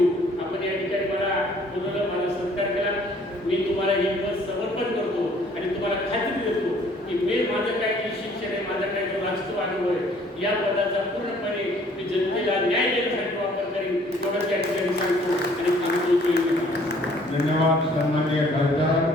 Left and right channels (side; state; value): both; normal; correlation 0.58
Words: आपण या ठिकाणी मला बोलवलं, माझा सत्कार केला. मी तुम्हाला हे पद समर्पण करतो आणि तुम्हाला खात्री देतो की मी माझं काय जे शिक्षण आहे, माझा काय जो राजकीय अनुभव आहे, या पदाचा पूर्णपणे मी जनतेला न्याय देण्यासाठी वापर करेन. एवढंच या ठिकाणी सांगतो आणि सांगतो. धन्यवाद सन्माननीय खासदार